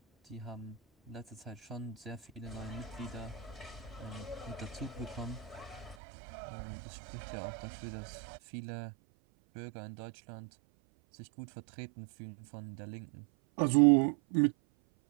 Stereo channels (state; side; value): drops out; left; at 6.0 s